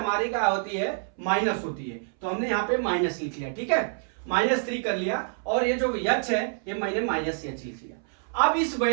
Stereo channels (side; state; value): left; silent; 60 dB below the other